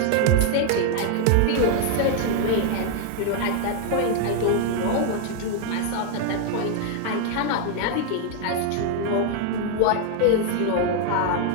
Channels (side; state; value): both; different; correlation 0.00